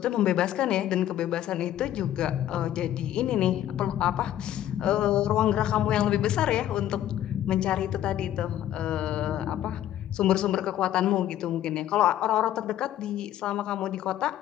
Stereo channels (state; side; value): quieter; right; 12.1 dB